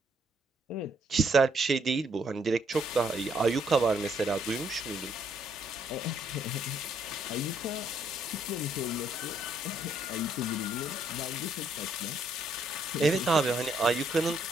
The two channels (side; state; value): both; normal; correlation 0.70